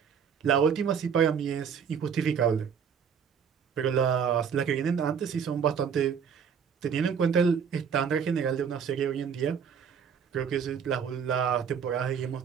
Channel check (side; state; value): left; quieter; 7.2 dB